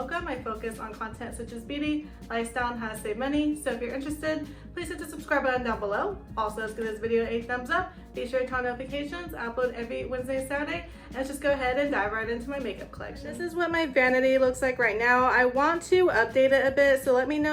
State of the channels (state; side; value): identical; both; correlation 1.00